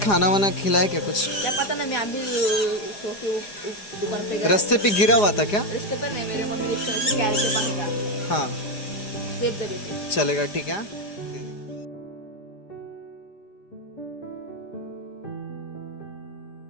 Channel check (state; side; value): late; right; 5.0 ms